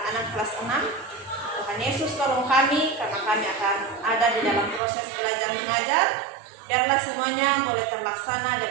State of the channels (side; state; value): left; drops out; at 4.8 s